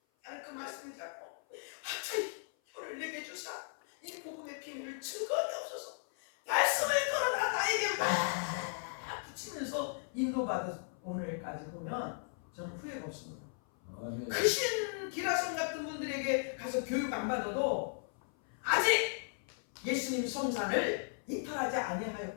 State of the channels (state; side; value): silent; right; 54 dB below the other